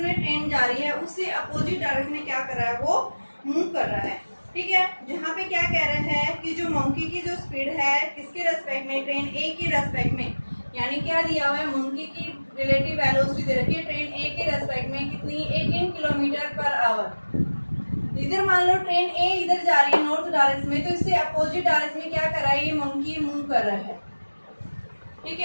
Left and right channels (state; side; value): inverted; both; correlation -1.00